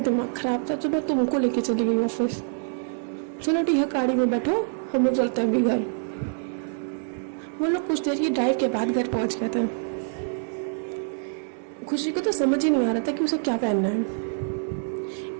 दिमाग खराब था तो मैं तुमको लेके चली गई ऑफिस। चलो ठीक है, गाड़ी में बैठो, हम लोग चलते हैं अभी घर। वो लोग कुछ देर की ड्राइव के बाद घर पहुंच गए थे। खुशी को तो समझ ही नहीं आ रहा था कि उसे क्या पहनना है।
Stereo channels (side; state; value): left; silent; digital silence